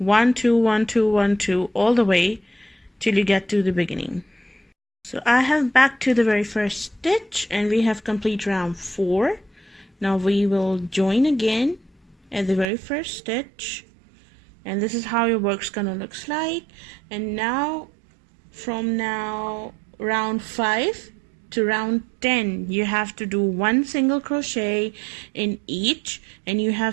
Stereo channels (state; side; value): drops out; left; at 12.7 s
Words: 2 1 2 1 2 all the way till you get to the beginning. So I have back to the very first stitch, and we have complete round 4. Now we will join again at the very first stitch, and this is how your work's gonna looks like. And now from round 5 to round 10, you have to do 1 single crochet in each, and you